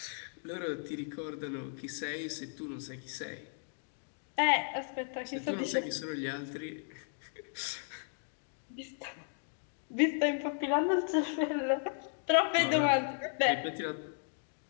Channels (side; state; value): right; silent; 54 dB below the other